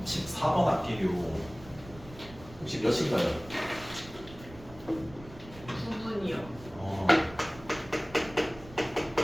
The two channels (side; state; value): right; noise; rumble, 18 dB below the sound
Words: 14번 할게요. 혹시 몇인가요? 9분이요.